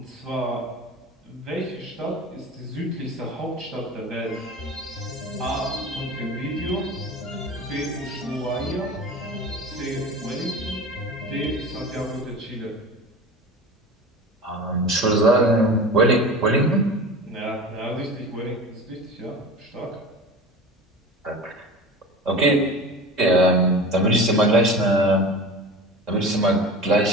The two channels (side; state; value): both; normal; correlation 0.33